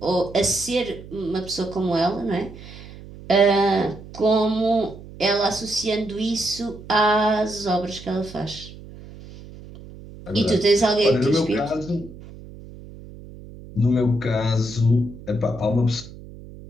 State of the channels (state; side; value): noise; right; hum, 16 dB below the sound